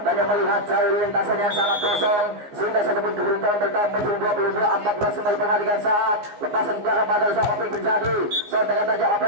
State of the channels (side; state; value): left; late; 14 ms